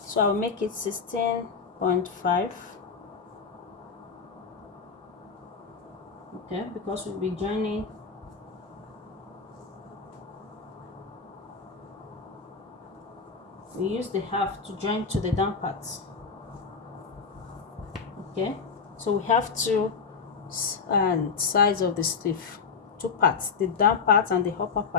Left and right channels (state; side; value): quieter; right; 5.4 dB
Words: So I'll make it 16.5. Okay, because we'll be joining we use the half to join to the down parts. Okay, so we have two sides of the sleeve, 2 parts, the down part and the upper